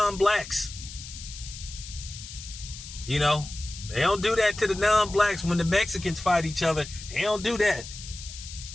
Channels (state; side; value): noise; left; hiss, 13 dB below the sound